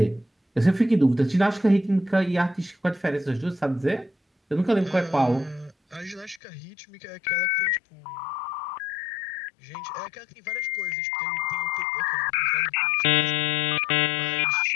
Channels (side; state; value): right; drops out; at 6.4 s